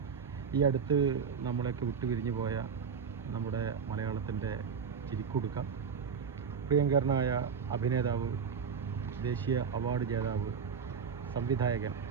ഈ അടുത്ത് നമ്മളെയൊക്കെ വിട്ടുപിരിഞ്ഞു പോയ നമ്മുടെ മലയാളത്തിൻ്റെ ചിരിക്കുടുക്ക, പ്രിയങ്കരനായ അഭിനേതാവ്, ദേശീയ അവാർഡ് ജേതാവ്, സംവിധായകൻ,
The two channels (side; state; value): left; quieter; 6.4 dB